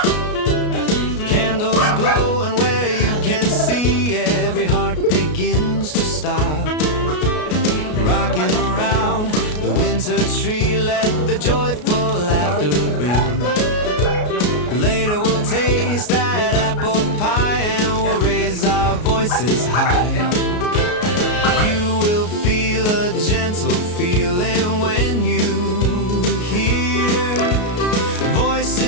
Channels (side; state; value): right; late; 33 ms